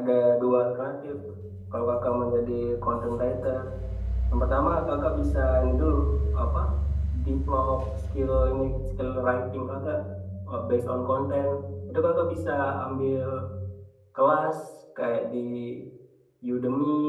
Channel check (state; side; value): identical; both; correlation 1.00